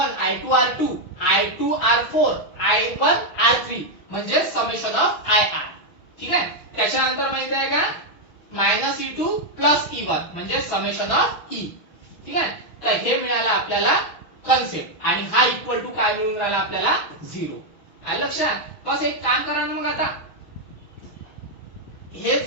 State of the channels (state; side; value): late; right; 6.3 ms